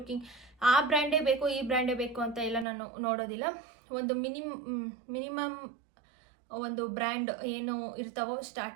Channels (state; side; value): drops out; left; at 2.7 s